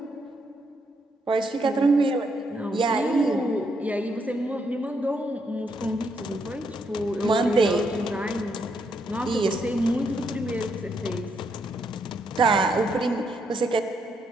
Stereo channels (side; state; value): both; normal; correlation 0.77